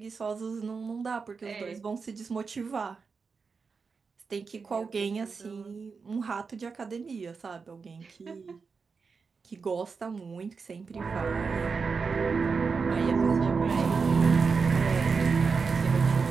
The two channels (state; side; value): quieter; left; 5.1 dB